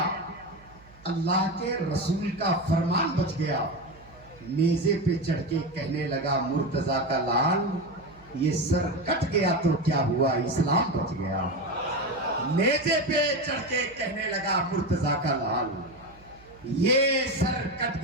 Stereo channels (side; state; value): right; noise; hum, 25 dB below the sound